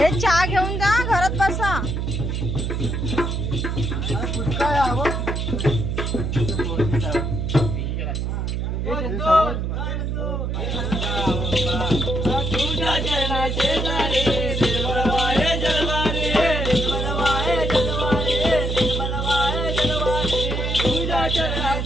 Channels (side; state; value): right; noise; hum, 1 dB below the sound